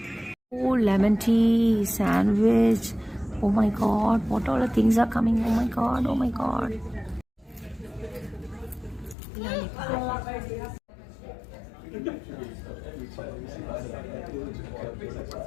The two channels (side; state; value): right; drops out; at 9.2 s